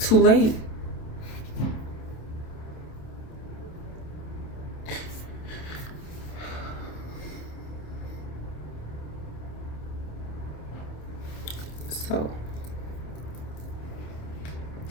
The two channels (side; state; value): right; late; 27 ms